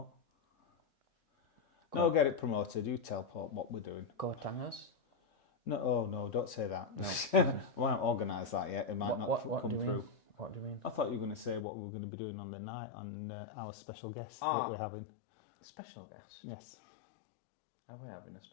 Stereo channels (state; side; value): drops out; right; at 11.7 s